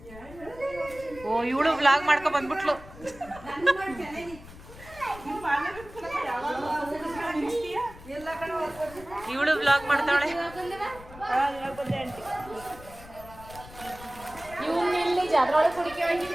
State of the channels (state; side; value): noise; left; rumble, 18 dB below the sound